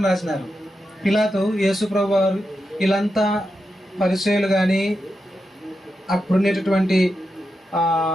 రాసినారు? పిలాతు యేసుప్రభు వారు, వీళ్ళంతా పరిసయ్యులు కానీ అప్పుడున్నటువంటి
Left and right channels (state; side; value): normal; both; correlation 0.88